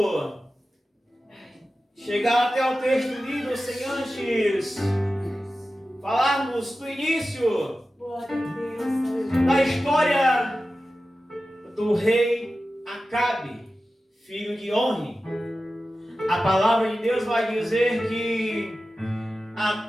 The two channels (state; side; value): normal; both; correlation 0.94